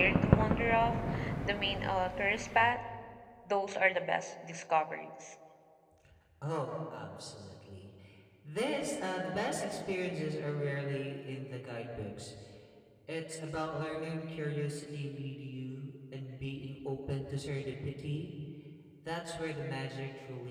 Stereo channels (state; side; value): identical; both; correlation 1.00